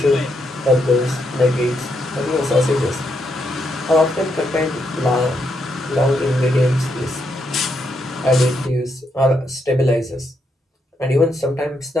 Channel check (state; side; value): normal; both; correlation 0.79